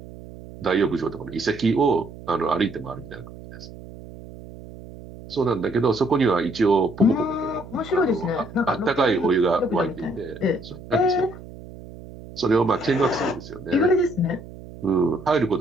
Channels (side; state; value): right; noise; hum, 16 dB below the sound